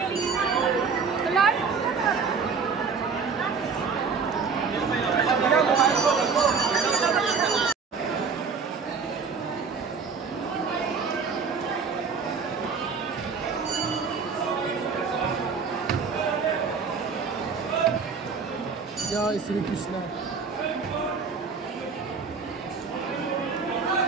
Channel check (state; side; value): quieter; left; 5.4 dB